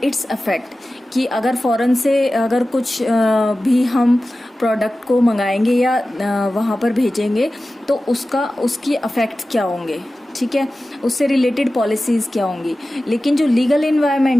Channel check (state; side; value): normal; both; correlation 0.95